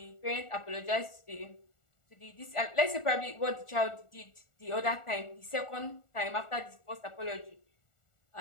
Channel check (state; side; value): late; right; 1.4 ms